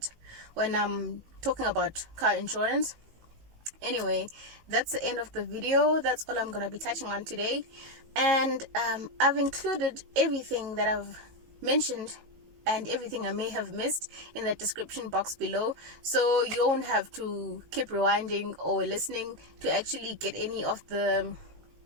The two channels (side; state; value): left; late; 18 ms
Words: when I'm talking about car insurance. Anyway, that's the end of the video. That's all I'm gonna be touching on today, and I've included everything that I've mentioned and everything I may have missed in the description box below, so you don't have to keep rewinding or listening to actually get any of the